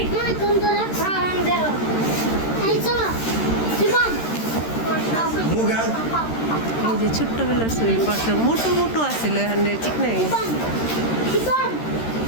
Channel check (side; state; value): right; late; 13 ms